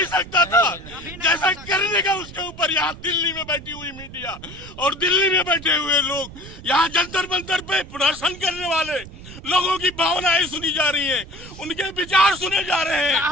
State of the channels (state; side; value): noise; right; rumble, 15 dB below the sound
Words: सकता था जैसा करने का उसके ऊपर। यहाँ दिल्ली में बैठी हुई मीडिया और दिल्ली में बैठे हुए लोग, यहाँ जंतर मंतर पे प्रदर्शन करने वाले लोगों की भावनाएं सुनी जा रही हैं, उनके विचार सुने जा रहे हैं,